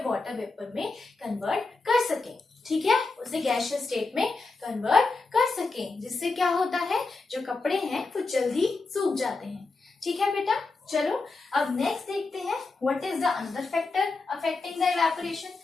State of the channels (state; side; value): quieter; right; 3.8 dB